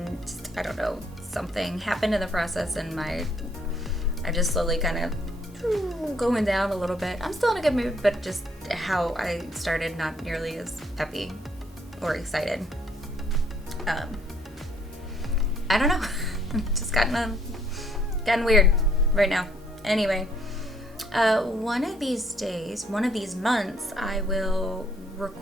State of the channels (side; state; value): both; normal; correlation 0.67